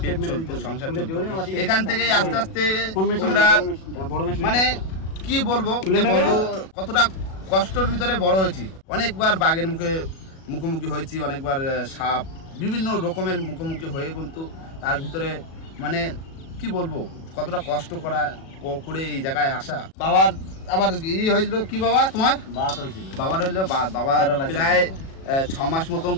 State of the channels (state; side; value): late; right; 37 ms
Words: পেট চলতো, সংসার চলতো। এখান থেকে আস্তে আস্তে আমরা মানে কি বলবো কতটা কষ্টের ভিতরে বড় হয়েছি। অনেকবার বাঘের মুখোমুখি হয়েছি, অনেকবার সাপ বিভিন্ন রকমের মুখোমুখি হয়ে কিন্তু তার ভিতরে মানে কি বলবো কতটা কষ্ট করে এই জায়গায় আসা। বাবার আবার হয়েছিল কি বাবা? তোমার বাবার হইলো বাবা প্রায় 6 মাস মতন